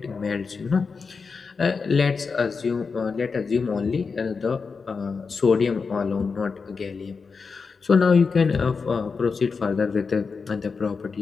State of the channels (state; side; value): quieter; right; 5.0 dB